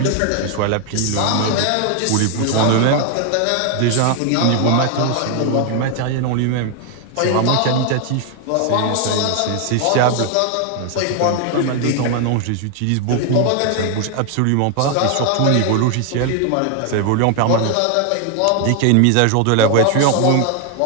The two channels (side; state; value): both; different; correlation 0.00